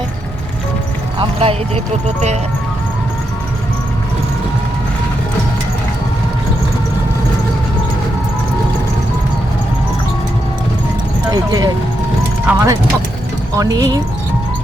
আমরা এই যে টোটোতে। এই যে আমাদের অনি,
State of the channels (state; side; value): normal; both; correlation 0.83